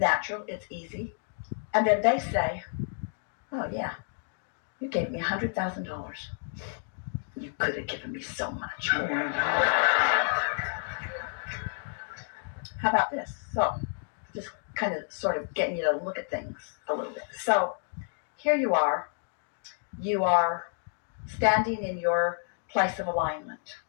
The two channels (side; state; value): right; silent; digital silence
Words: It's easy. And then they say, oh, yeah, you gave me $100,000. You could have given me so much more. How about this? So just kind of sort of getting you to look at things a little bit. So here you are. You are standing in your place of alignment.